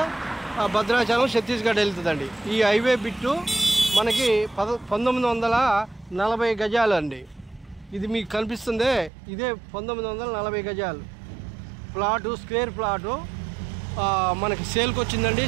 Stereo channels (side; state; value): left; drops out; at 9.1 s